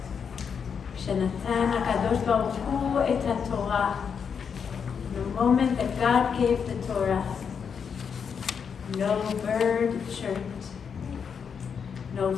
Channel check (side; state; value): right; quieter; 6.7 dB